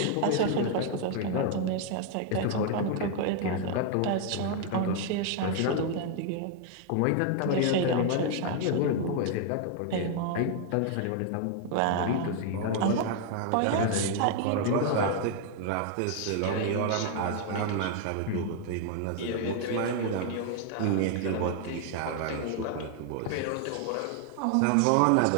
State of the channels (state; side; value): different; both; correlation 0.00